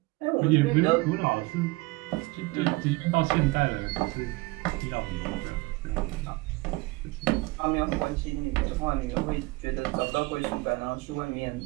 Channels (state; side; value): quieter; left; 23.3 dB